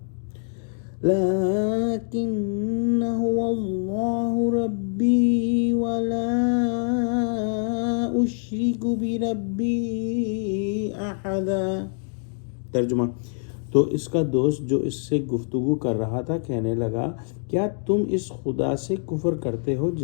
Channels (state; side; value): silent; right; 62 dB below the other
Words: لكن هو الله ربي ولا أشرك بربي أحدا۔ ترجمہ: تو اس کا دوست جو اس سے گفتگو کر رہا تھا کہنے لگا، کیا تم اس خدا سے کفر کرتے ہو